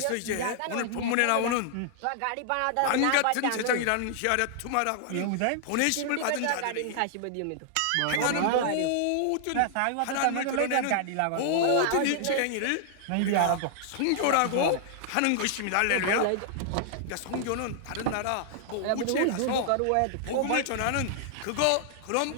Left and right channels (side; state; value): both; different; correlation -0.01